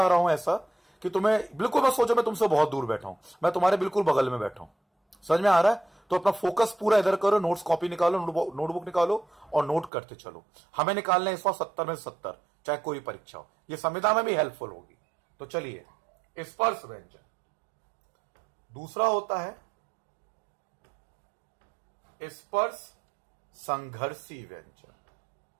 रहा हूं ऐसा कि तुम्हें बिल्कुल मत सोचो मैं तुमसे बहुत दूर बैठा हूं, मैं तुम्हारे बिल्कुल बगल में बैठा हूं। समझ में आ रहा है? तो अपना फोकस पूरा इधर करो, नोट्स कॉपी निकालो, नोटबुक निकालो और नोट करते चलो। हमें निकालना है इस बार 70 में 70, चाहे कोई परीक्षा हो। ये संविदा में भी हेल्पफुल होगी। तो चलिए, स्पर्श व्यंजन। दूसरा होता है स्पर्श संघर्षी व्यंजन,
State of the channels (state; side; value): drops out; left; at 9.9 s